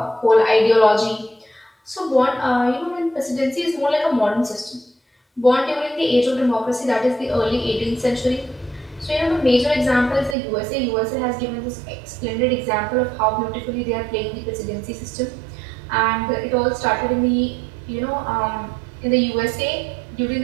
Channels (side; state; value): left; drops out; at 10.4 s